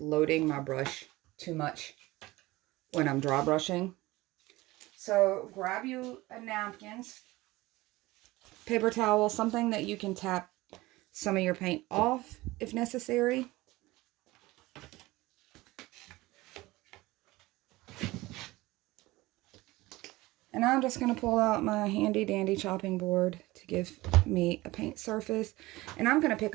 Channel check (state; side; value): quieter; left; 19.7 dB